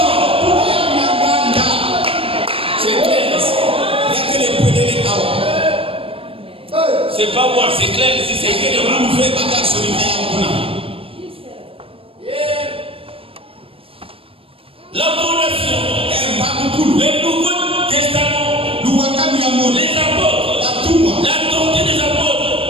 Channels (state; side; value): late; left; 0.27 ms